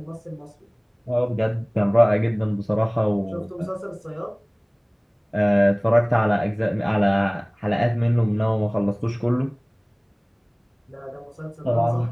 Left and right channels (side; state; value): both; identical; correlation 1.00